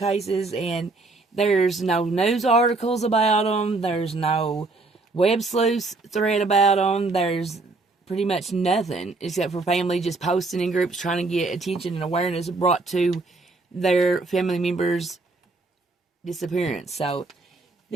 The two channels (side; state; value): left; quieter; 3.5 dB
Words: and there's no news articles about them. There's no web sleuth thread about them. There's pretty much nothing except for family just posting in groups trying to get attention and awareness brought to their family members' disappearance. So